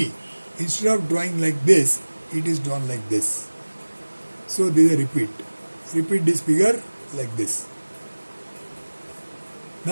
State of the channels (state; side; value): inverted; both; correlation -1.00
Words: instead of drawing like this, it is drawn like this. So there is a repeat. Repeat this figure like this.